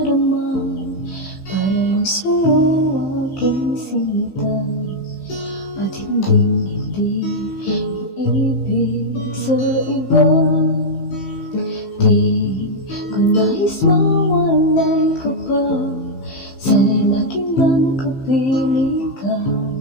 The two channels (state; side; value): late; right; 15 ms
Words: para lang sa'yo aking sinta, at hindi iibig sa iba. Di ko nais mawalay ka pa, sana'y laging nang kapiling ka,